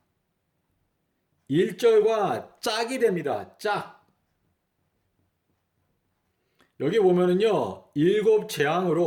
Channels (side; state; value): both; identical; correlation 1.00